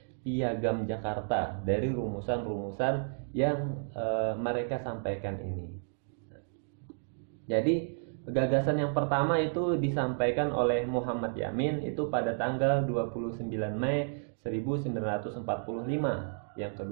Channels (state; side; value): silent; left; digital silence